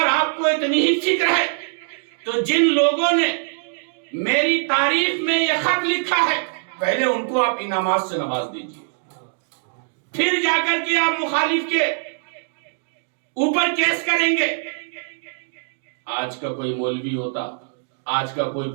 آپ کو اتنی ہی فکر ہے تو جن لوگوں نے میری تعریف میں یہ خط لکھا ہے پہلے ان کو آپ انعامات سے نواز دیجئے، پھر جا کر کے آپ مخالف کے اوپر کیس کریں گے۔ آج کا کوئی مولوی ہوتا، آج کا کوئی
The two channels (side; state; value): left; silent; digital silence